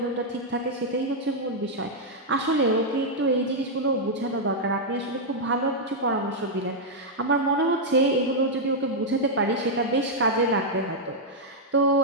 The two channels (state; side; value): normal; both; correlation -0.04